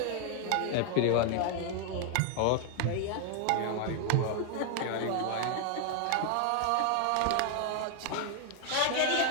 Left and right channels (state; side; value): different; both; correlation 0.00